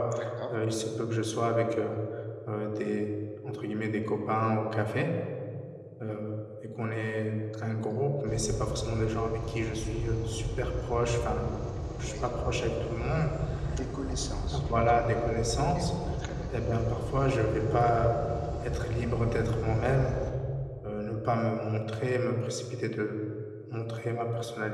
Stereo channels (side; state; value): both; identical; correlation 1.00